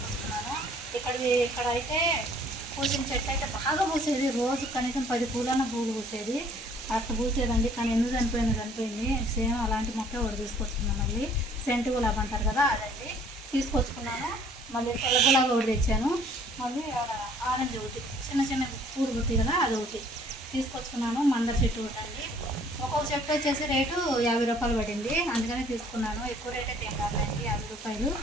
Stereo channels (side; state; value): both; normal; correlation 0.57